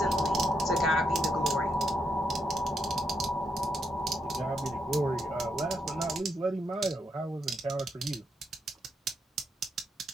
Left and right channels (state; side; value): normal; both; correlation 0.80